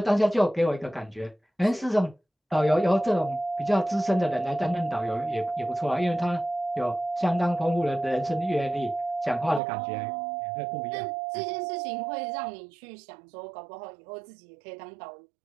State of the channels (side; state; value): left; drops out; at 9.6 s